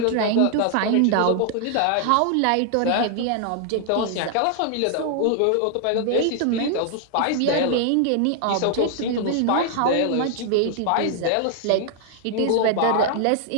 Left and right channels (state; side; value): different; both; correlation 0.00